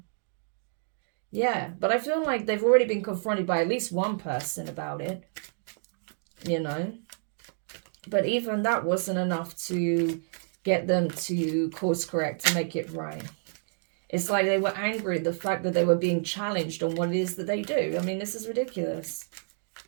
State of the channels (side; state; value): left; silent; digital silence